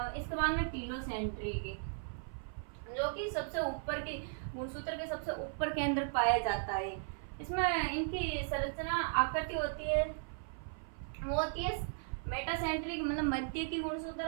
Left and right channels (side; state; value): left; silent; 53 dB below the other